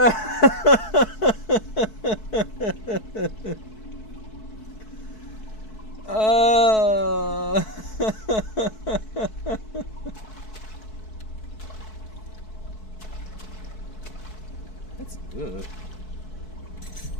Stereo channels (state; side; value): late; right; 4.6 ms